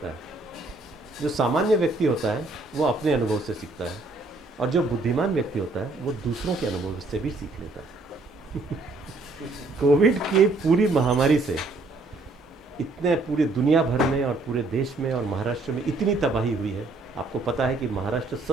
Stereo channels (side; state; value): left; quieter; 3.3 dB